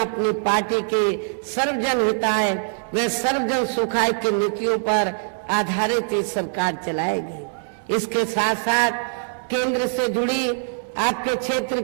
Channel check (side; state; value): left; silent; digital silence